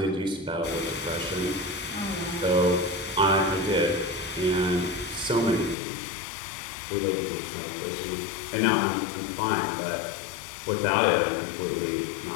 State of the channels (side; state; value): right; drops out; at 5.8 s